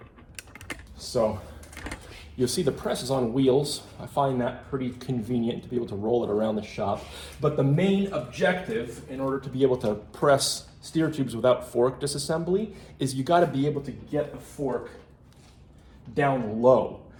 So you'll see the press is on wheels. I find that pretty convenient to be able to roll it around the shop. But the main objective in order to be able to press steer tubes without fork disassembly is you got to be able to get the fork down low.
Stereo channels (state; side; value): identical; both; correlation 1.00